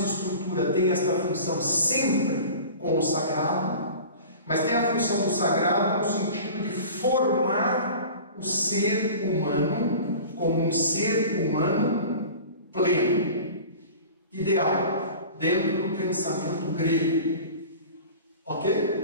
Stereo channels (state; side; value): inverted; both; correlation -0.39